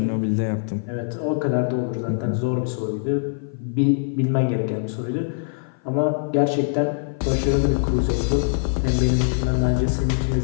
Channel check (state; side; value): silent; right; 56 dB below the other